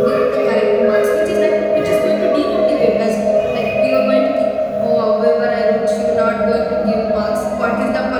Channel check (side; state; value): both; identical; correlation 1.00